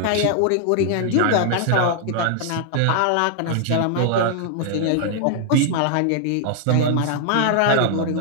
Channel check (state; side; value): different; both; correlation 0.00